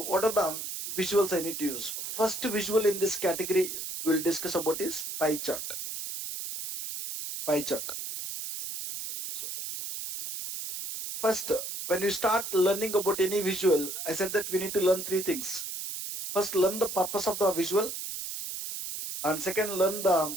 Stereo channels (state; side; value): noise; right; hiss, 6 dB below the sound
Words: what are the visuals I need to use? First visual in this category we'll discuss about is pie chart. Pie chart. So first, when you start learning about any visual, I said that we need to learn 3 things. First, learn the purpose of the visual. And second, learn